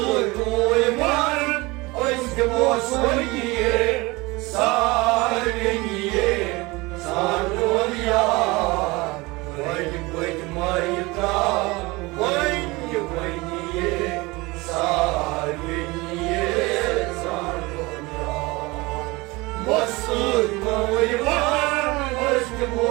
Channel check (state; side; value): quieter; left; 23.2 dB